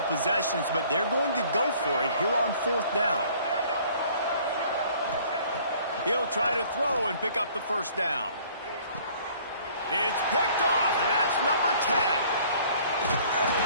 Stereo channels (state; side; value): inverted; both; correlation -0.55